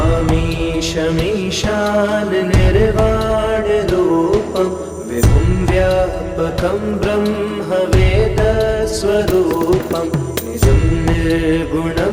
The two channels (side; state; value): both; identical; correlation 1.00